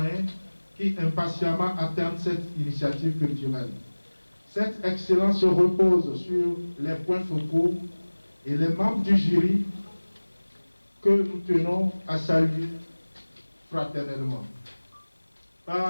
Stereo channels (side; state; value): both; inverted; correlation -1.00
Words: qui impatiemment attendent cette initiative culturelle. Cette excellence se repose sur les points focaux et les membres du jury que nous tenons à saluer fraternellement